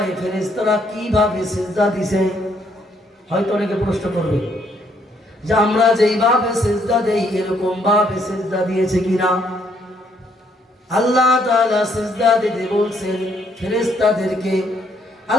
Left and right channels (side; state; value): both; normal; correlation 0.69